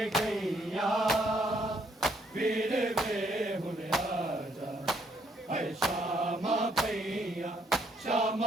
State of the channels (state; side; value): normal; both; correlation 0.70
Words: गईया वीर वे हुन राजा है श्यामा पैया